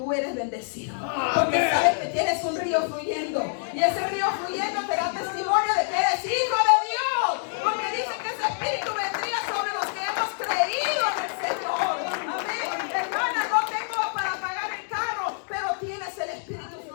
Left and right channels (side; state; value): right; silent; digital silence